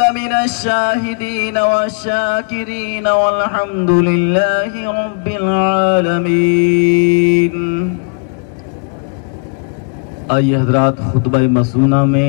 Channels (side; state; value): right; quieter; 38.1 dB